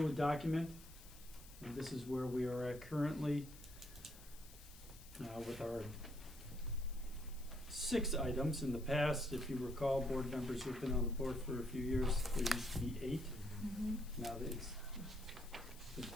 document. And this is where we are at currently with our 6 items. In the past, if you recall, board members who've been on the board for a few years, there used to be 8. Mm-hmm. Now that it's been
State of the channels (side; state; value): left; noise; hiss, 19 dB below the sound